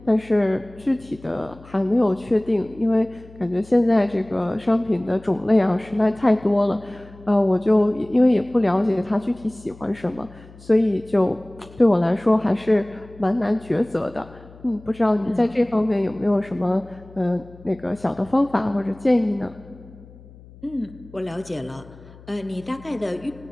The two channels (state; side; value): noise; left; hum, 21 dB below the sound